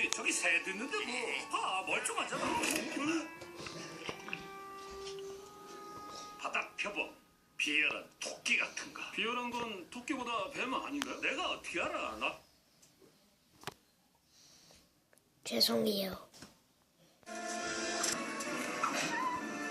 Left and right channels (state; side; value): identical; both; correlation 1.00